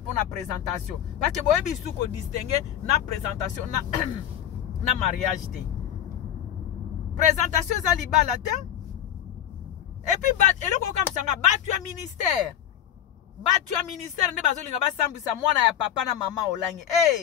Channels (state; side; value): quieter; right; 10.6 dB